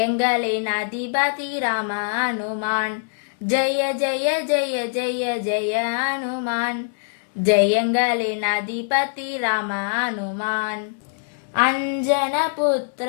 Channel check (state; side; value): silent; right; 64 dB below the other